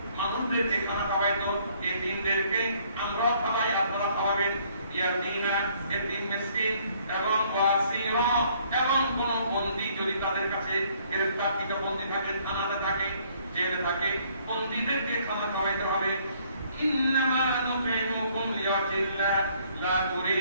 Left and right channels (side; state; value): both; inverted; correlation -0.63